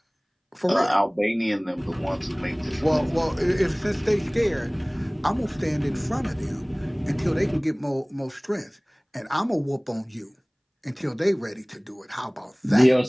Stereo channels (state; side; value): identical; both; correlation 1.00